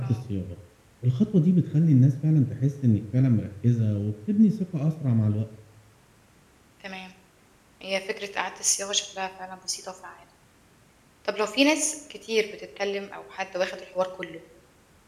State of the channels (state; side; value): identical; both; correlation 1.00